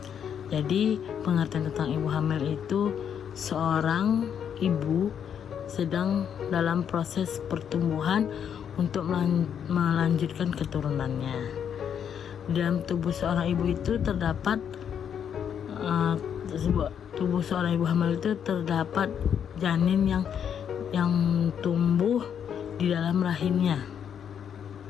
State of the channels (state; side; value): quieter; right; 8.3 dB